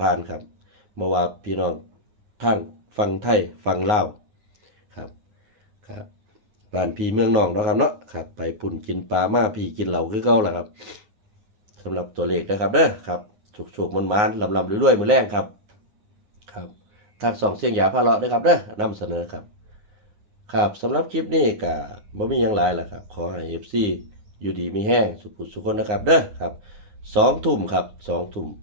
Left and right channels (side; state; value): left; late; 9.6 ms